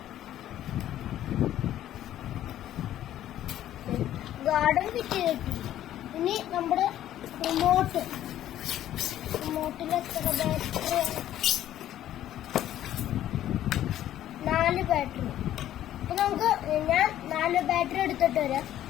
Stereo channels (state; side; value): quieter; right; 12.3 dB